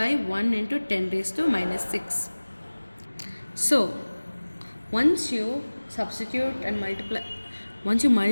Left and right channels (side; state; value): both; inverted; correlation -1.00